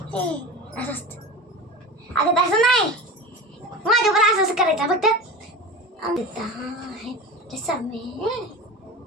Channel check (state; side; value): normal; both; correlation 0.30